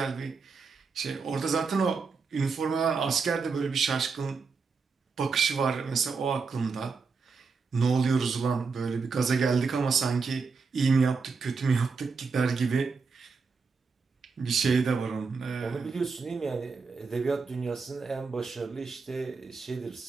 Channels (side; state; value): left; quieter; 4.9 dB